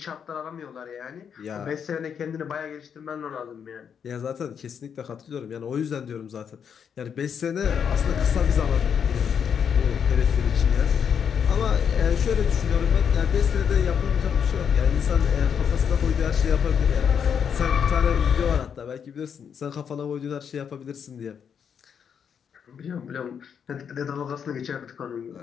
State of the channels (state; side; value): quieter; right; 7.5 dB